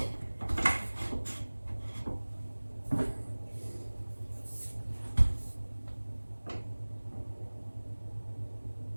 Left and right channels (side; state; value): both; inverted; correlation -1.00